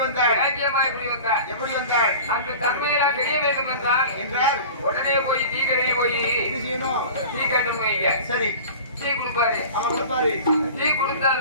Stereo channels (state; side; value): inverted; both; correlation -0.38